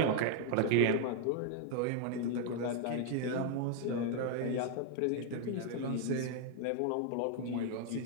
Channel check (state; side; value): different; both; correlation 0.00